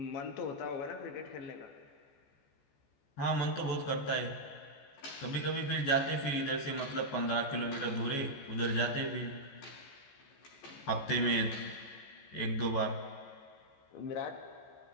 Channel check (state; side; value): late; right; 14 ms